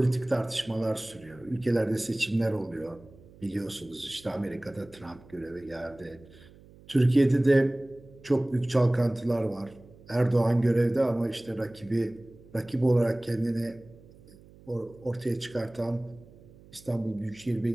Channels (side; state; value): right; noise; hum, 23 dB below the sound